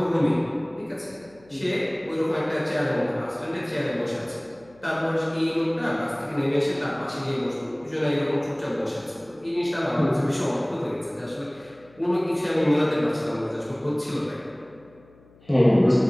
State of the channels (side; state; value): left; noise; hum, 27 dB below the sound